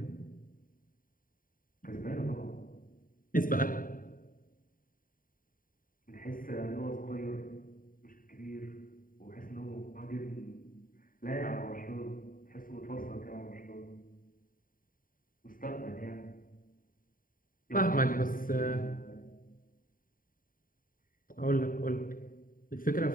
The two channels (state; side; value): late; right; 0.41 ms